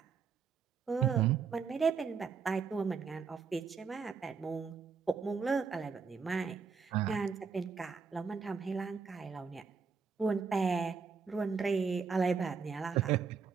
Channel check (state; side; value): quieter; left; 5.6 dB